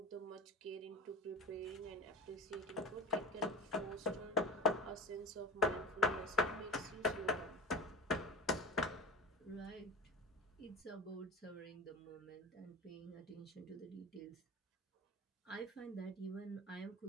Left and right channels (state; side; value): normal; both; correlation 0.33